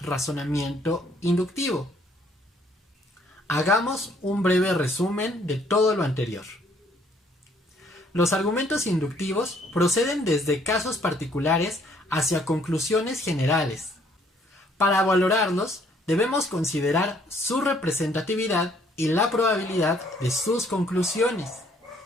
razonamiento inductivo. Hagamos un breve resumen de todo lo anterior. Los argumentos inductivos proceden desde casos particulares hacia conclusiones generales. Para valorarlos, debemos considerar su representatividad y la probabilidad de sus conclusiones.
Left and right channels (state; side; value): normal; both; correlation 0.64